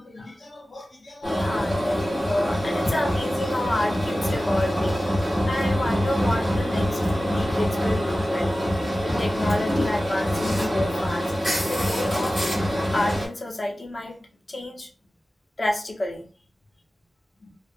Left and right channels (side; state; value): both; normal; correlation 0.95